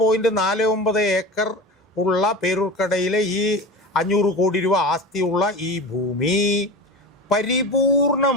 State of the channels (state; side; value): normal; both; correlation 0.30